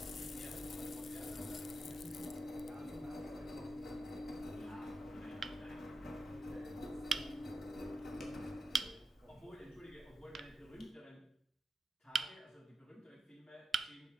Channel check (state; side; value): normal; both; correlation 0.88